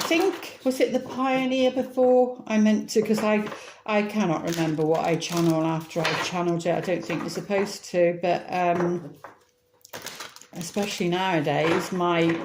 was it the Pioneer before? I meant to, because I cannot remember what I channel after I channeled it. I don't think you're supposed to, but especially nowadays, my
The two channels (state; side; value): identical; both; correlation 1.00